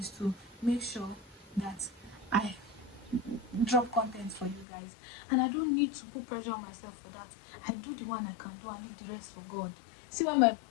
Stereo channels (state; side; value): drops out; right; at 4.7 s